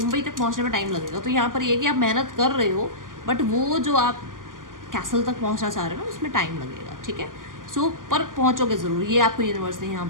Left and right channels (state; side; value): late; left; 0.89 ms